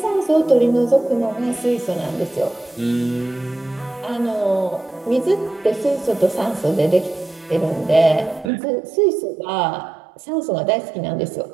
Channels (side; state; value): left; drops out; at 8.5 s